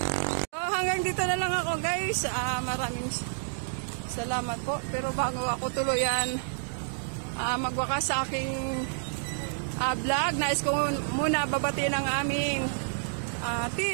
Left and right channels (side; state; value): left; silent; digital silence